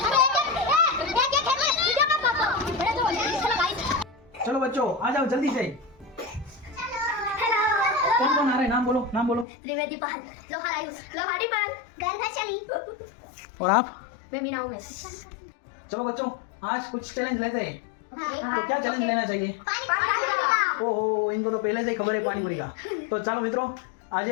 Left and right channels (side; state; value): right; drops out; at 9.5 s